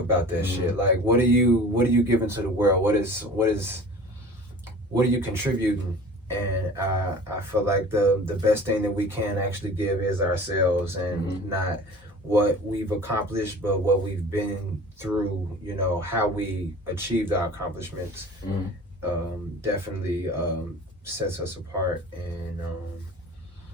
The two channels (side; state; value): both; normal; correlation 0.42